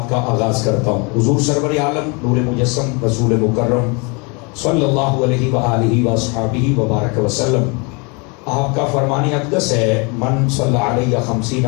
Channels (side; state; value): right; quieter; 31.3 dB